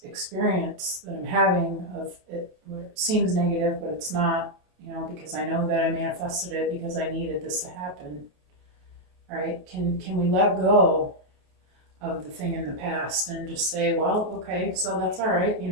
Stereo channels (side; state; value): left; late; 28 ms